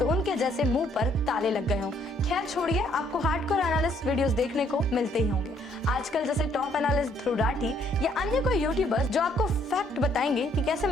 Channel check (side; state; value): both; normal; correlation 0.67